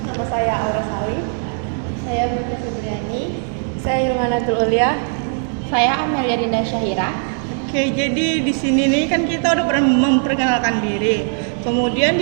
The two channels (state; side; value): silent; left; 59 dB below the other